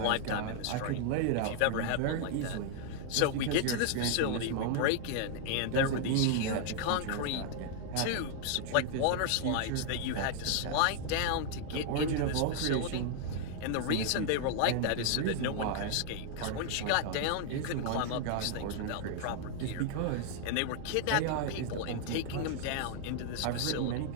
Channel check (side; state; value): both; different; correlation 0.00